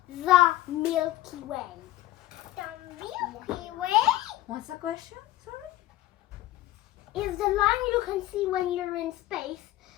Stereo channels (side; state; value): right; quieter; 15.4 dB